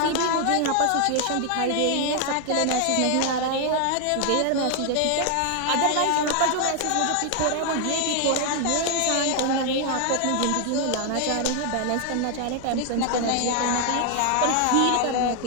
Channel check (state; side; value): different; both; correlation 0.00